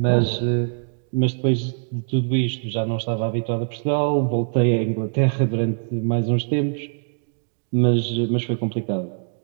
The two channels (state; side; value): silent; left; digital silence